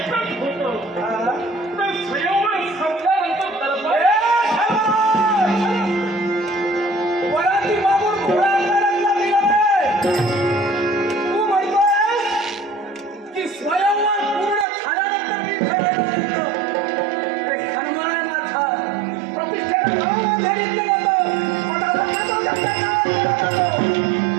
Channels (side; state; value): left; drops out; at 14.7 s